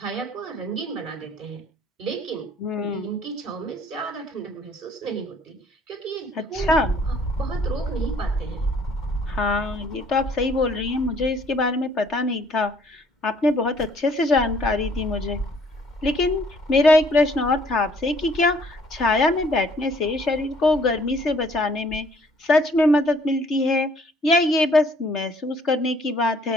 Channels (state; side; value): normal; both; correlation 0.60